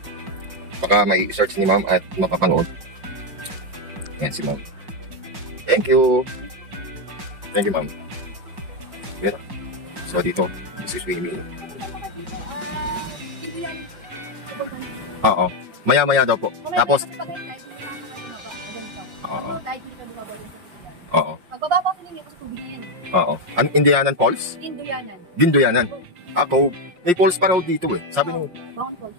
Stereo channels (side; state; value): left; late; 5.6 ms